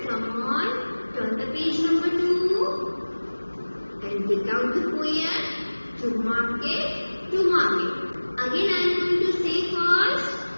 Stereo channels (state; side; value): inverted; both; correlation -1.00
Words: come on. Turn the page number 2. And take out the poem. To market, to market. Again I am going to say first.